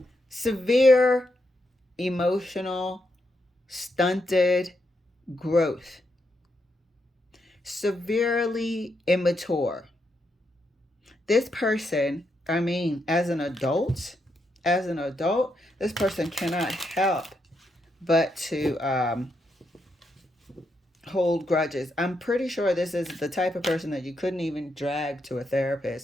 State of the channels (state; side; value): normal; both; correlation 0.81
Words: Severe emotional stunted growth. Severely immature. This person, I mean, as an adult, this person cannot help but to hold grudges. I'm pretty sure this is the type of person that you couldn't even drag to a